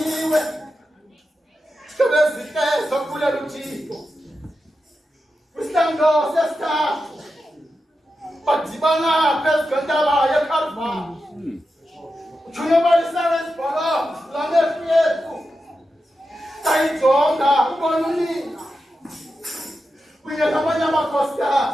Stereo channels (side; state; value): both; normal; correlation 0.90